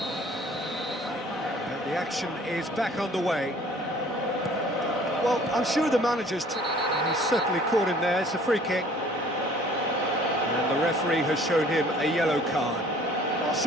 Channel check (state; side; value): normal; both; correlation 0.53